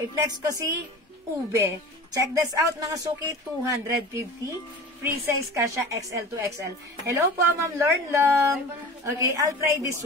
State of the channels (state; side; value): normal; both; correlation 0.37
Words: ko si ube. Check this out, mga suki, 250. Free size kasha XL to XL. Hello po, Ma'am Lornlong. Okay, I'll try this